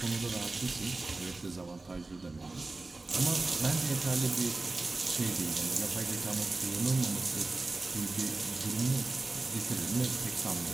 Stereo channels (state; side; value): quieter; left; 3.3 dB